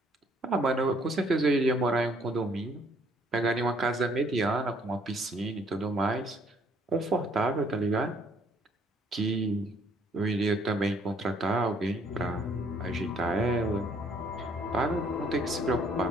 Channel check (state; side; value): normal; both; correlation 0.64